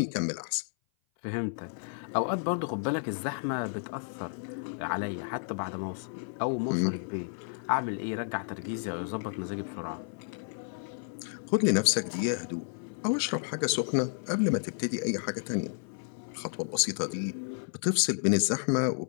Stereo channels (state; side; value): silent; right; 56 dB below the other